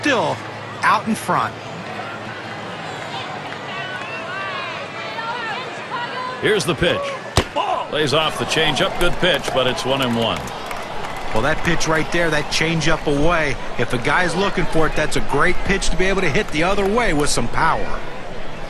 out in front. Here's the pitch. Lays off the changeup. Good pitch, but it's 1-1. Well, that pitch right there, that changeup away, if a guy's looking for it, that's a great pitch to be able to hit the other way with some power.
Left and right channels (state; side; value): identical; both; correlation 1.00